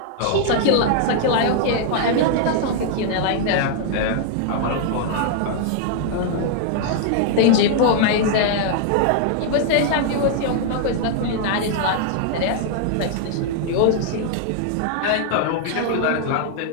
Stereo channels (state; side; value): different; both; correlation 0.00